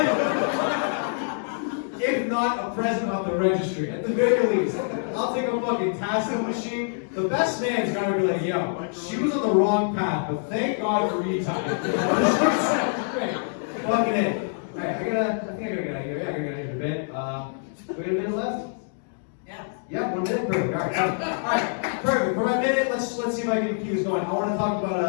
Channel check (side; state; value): right; silent; digital silence